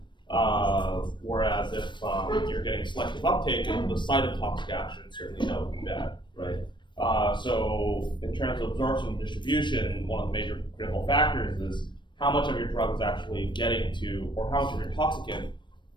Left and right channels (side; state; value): right; late; 0.22 ms